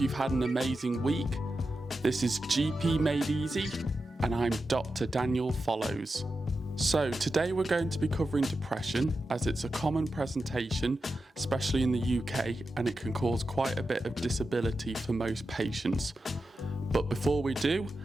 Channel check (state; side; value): normal; both; correlation 0.90